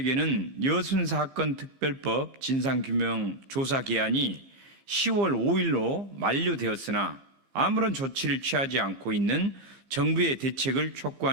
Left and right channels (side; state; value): left; late; 15 ms